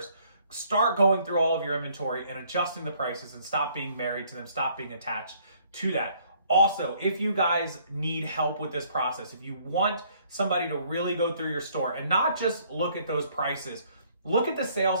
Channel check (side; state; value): both; inverted; correlation -0.63